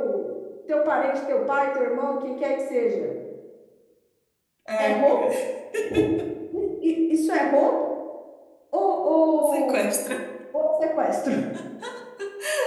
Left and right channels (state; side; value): identical; both; correlation 1.00